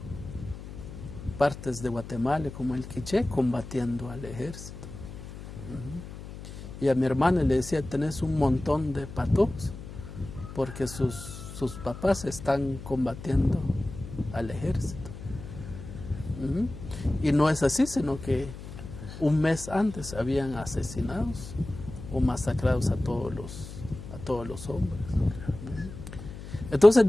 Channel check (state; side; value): noise; left; hum, 12 dB below the sound